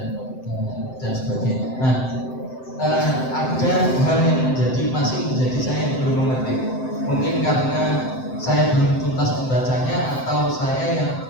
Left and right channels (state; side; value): late; right; 7.8 ms